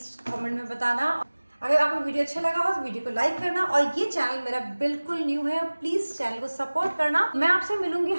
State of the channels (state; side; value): inverted; both; correlation -1.00